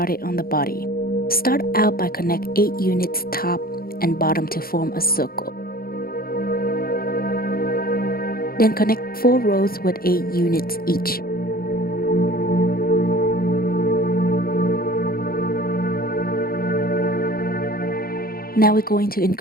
on the body. Start out by connect 8 units top and bottom to form a circle. Then connect 4 rows with 8 units each. Now we're going to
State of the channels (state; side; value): late; right; 0.43 ms